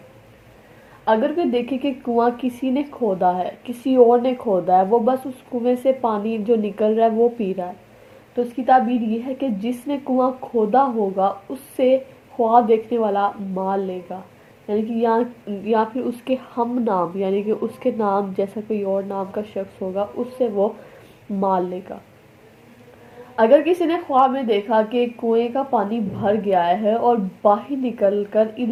اگر کوئی دیکھے کہ کنواں کسی نے کھودا ہے، کسی اور نے کھودا ہے، وہ بس اس کنویں سے پانی جو نکل رہا ہے وہ پی رہا ہے، تو اس کی تعبیر یہ ہے کہ جس نے کنواں کھودا ہوگا اس سے خواب دیکھنے والا مال لے گا، یعنی کہ یا پھر اس کے ہم نام، یعنی کہ اس کے نام جیسا کوئی اور نام کا شخص ہوگا اس سے وہ مال لے گا۔ اگر کسی نے خواب میں دیکھا کہ کنویں کا پانی بھر گیا ہے اور باہر نکل کر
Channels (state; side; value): identical; both; correlation 1.00